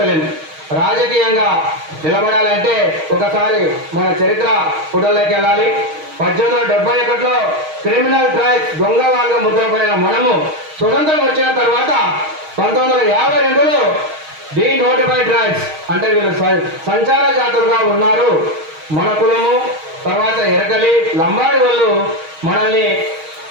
రాజకీయంగా నిలబడాలంటే ఒకసారి మన చరిత్ర పుటల్లోకి వెళ్ళాలి. 1871లో క్రిమినల్ ట్రైబ్స్ దొంగ వాళ్ళగా ముద్రపడిన మనము స్వతంత్రం వచ్చిన తర్వాత 1952లో డీనోటిఫైడ్ ట్రైబ్స్ అంటే వీళ్ళు సంచార జాతులుగా ఉన్నారు. మన కులము తర్వాత ఎరకలి లంబాడి వాళ్ళు మనల్ని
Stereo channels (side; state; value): left; late; 6.4 ms